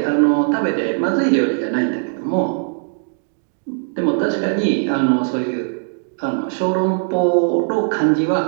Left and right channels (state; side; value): silent; left; digital silence